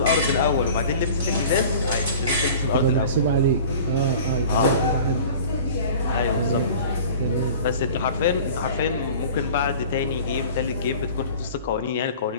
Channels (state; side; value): inverted; both; correlation -0.43